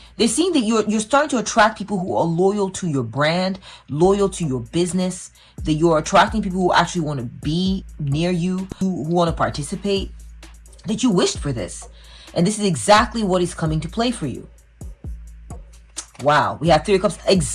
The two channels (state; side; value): identical; both; correlation 1.00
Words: They're seeing that you're starting to attract people who are loyal to your brand, loyal to your business, that you're attracting people who actually want to be near you, who want to participate, that you wished for this. And this is exactly what is coming to play for you. Wow, we have Three of Cups.